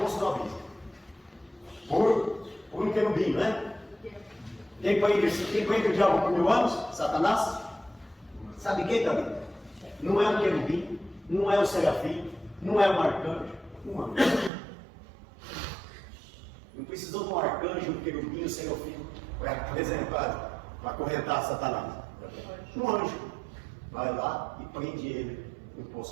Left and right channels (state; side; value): drops out; left; at 14.5 s